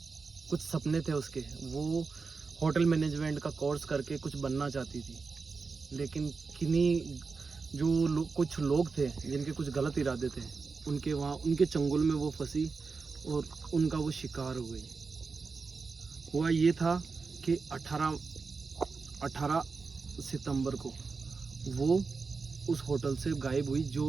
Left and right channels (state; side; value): quieter; left; 4.6 dB